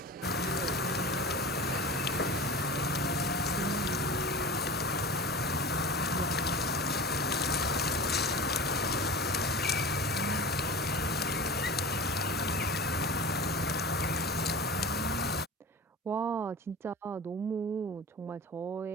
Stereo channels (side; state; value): both; normal; correlation 0.33